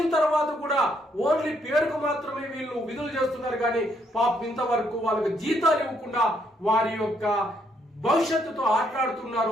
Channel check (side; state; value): both; normal; correlation 0.72